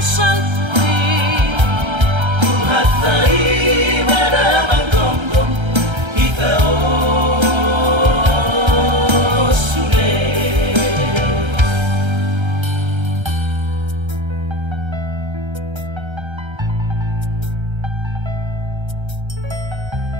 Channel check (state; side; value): late; left; 1.3 ms